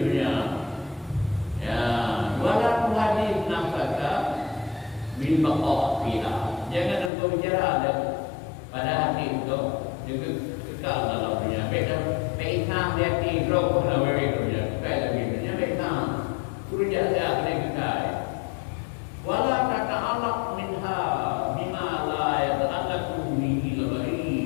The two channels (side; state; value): right; drops out; at 7.1 s